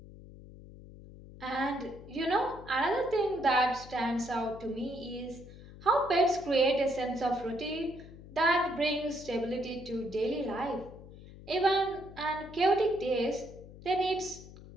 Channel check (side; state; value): left; noise; hum, 17 dB below the sound